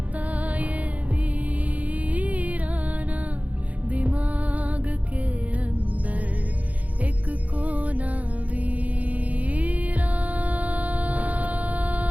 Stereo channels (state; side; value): late; left; 0.071 ms